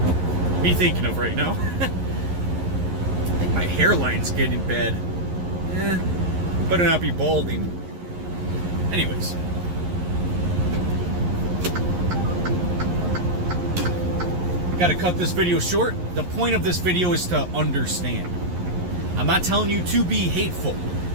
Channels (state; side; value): late; left; 11 ms